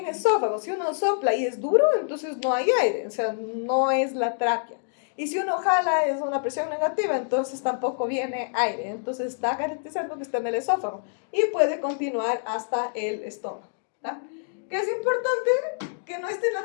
esófago. Si uno sopla y es duro, entonces no hay aire. O sea, no es la tráquea. Y si uno jala es una presión negativa, entonces tampoco viene aire. Entonces está garantizando que está en el esófago y puede continuar hasta el estómago. ¿Tá? Que es importante que no esté en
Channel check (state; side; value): silent; right; digital silence